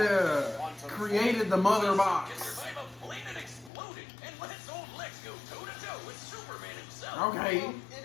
Created the Mother Can Box. survive a plane that exploded and lets old Lex go toe-to-toe with Superman himself. Okay. Well, it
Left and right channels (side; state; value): right; drops out; at 3.7 s